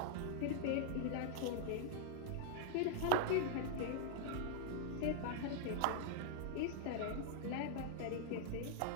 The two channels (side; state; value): both; different; correlation -0.01